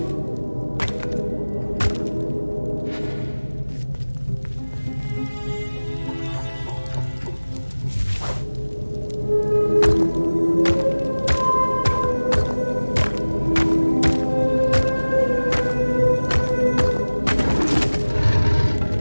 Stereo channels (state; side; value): inverted; both; correlation -1.00